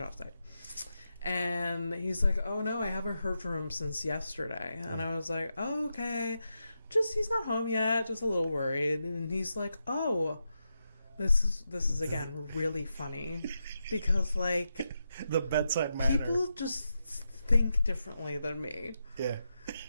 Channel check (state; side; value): inverted; both; correlation -0.86